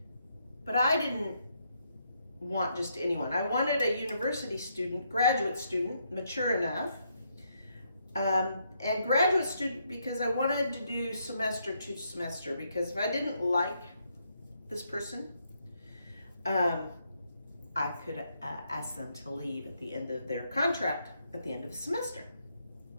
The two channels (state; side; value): inverted; both; correlation -0.76